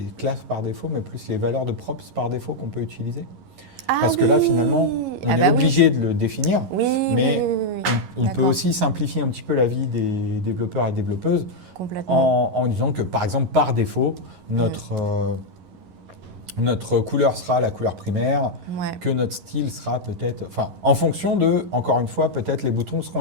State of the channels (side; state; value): left; late; 11 ms